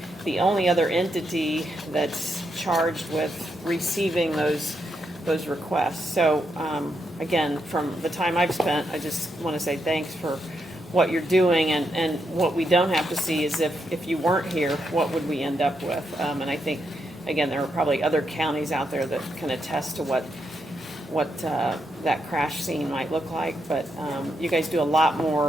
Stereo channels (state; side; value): normal; both; correlation 0.81